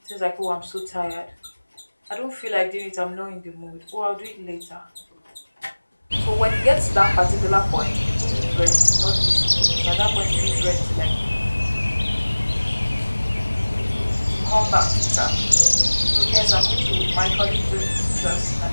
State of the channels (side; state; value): both; inverted; correlation -1.00